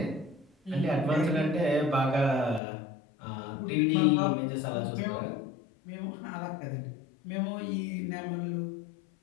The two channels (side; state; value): right; drops out; at 2.6 s